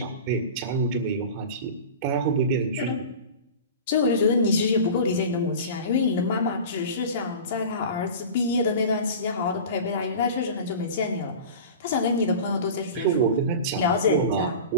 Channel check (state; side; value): inverted; both; correlation -0.34